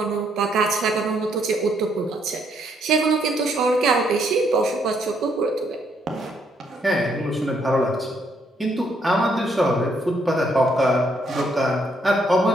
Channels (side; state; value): both; normal; correlation 0.72